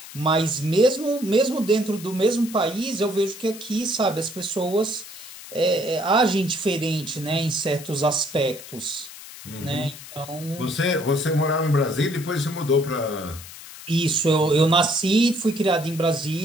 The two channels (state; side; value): noise; left; hiss, 15 dB below the sound